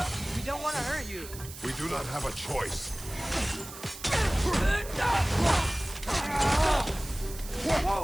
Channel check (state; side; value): noise; right; hiss, 14 dB below the sound